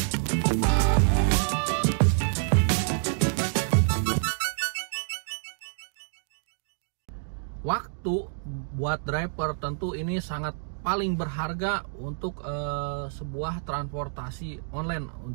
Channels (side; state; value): left; silent; digital silence